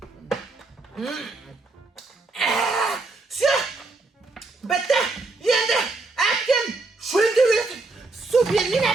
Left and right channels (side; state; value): left; quieter; 3.5 dB